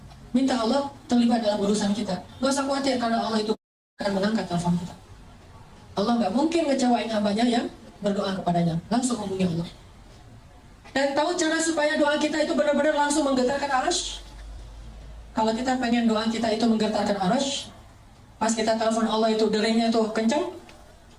minta Allah terlibat dalam urusan kita. Gak usah khawatir, karena Allah itu akan mengangkat telepon kita. Allah nggak mungkin ngecewain hambanya yang berdoa kepadanya. Langsung hubungi Allah. Dan tahu cara supaya doa kita itu benar-benar langsung menggetarkan arasy? Kalau kita pengen doa kita itu menggetarkan arasy, pas kita telepon Allah itu deringnya tuh kencang,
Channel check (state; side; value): identical; both; correlation 1.00